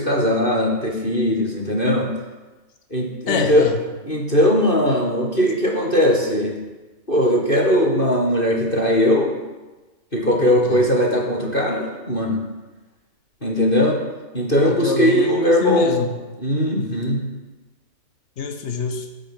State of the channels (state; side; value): late; right; 2.5 ms